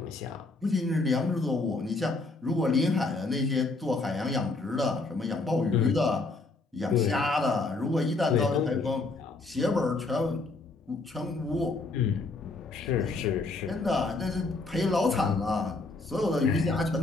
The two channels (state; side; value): quieter; right; 3.5 dB